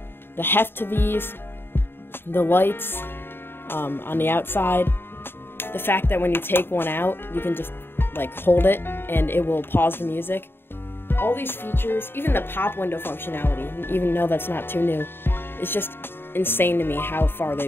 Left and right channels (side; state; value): right; late; 0.11 ms